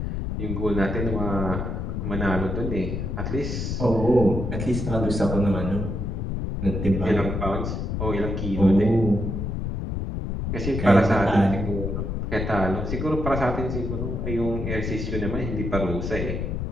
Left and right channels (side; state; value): left; noise; rumble, 3 dB below the sound